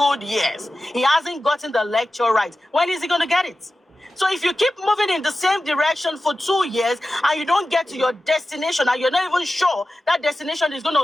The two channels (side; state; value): both; normal; correlation 0.94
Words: years. He hasn't gotten the lecture right. When is he going to get it? So if you keep moving in the same direction for 2 years and you don't get to your destination and you're not even sure that destination is going